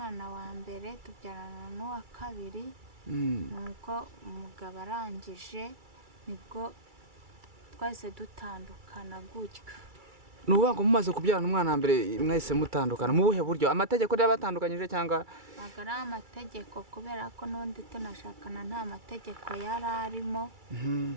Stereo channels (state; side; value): late; left; 2.3 ms